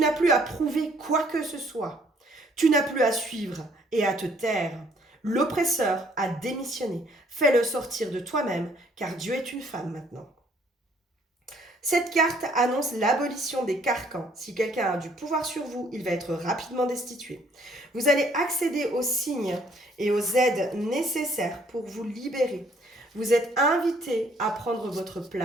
plus à prouver quoi que ce soit. Tu n'as plus à suivre et à te taire. L'oppresseur a démissionné. Fais-le sortir de toi-même, car Dieu est une femme maintenant. Cette carte annonce l'abolition des carcans. Si quelqu'un a du pouvoir sur vous, il va être rapidement destitué. Vous allez accéder aux signes et aux aides nécessaires pour vous libérer. Vous êtes invité à prendre votre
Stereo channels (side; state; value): both; normal; correlation 0.63